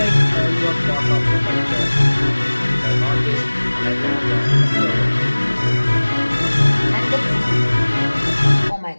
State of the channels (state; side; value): inverted; both; correlation -1.00